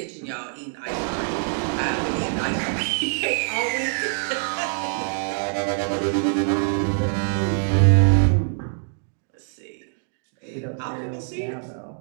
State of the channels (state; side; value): silent; left; digital silence